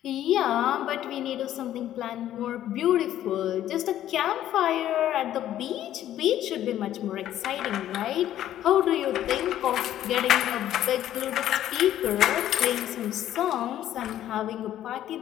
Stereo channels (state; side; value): quieter; right; 12.1 dB